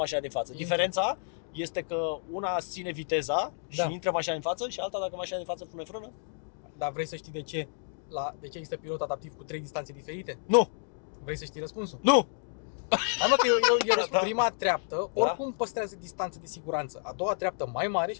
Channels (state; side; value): silent; right; digital silence